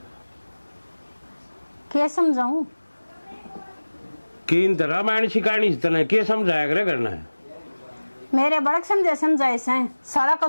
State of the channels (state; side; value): inverted; both; correlation -1.00